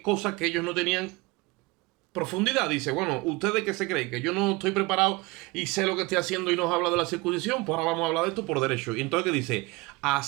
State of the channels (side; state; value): left; quieter; 23.5 dB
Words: que ellos no tenían profundidad. Dice, bueno, ¿ustedes qué se creen? ¿Que yo no estoy preparado y sé lo que estoy haciendo y nos habla de la circuncisión? Pues ahora vamos a hablar de esto por derecho. Y entonces, ¿qué dice?